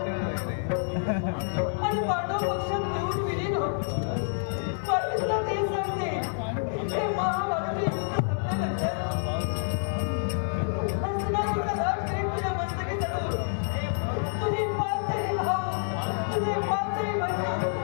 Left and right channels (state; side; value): silent; right; 59 dB below the other